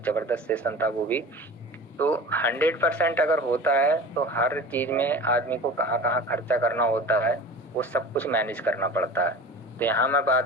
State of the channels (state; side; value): normal; both; correlation 0.37